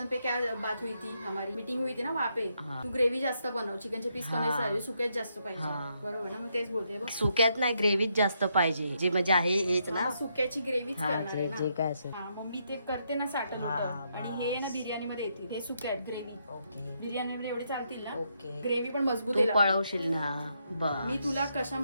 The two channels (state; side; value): inverted; both; correlation -0.78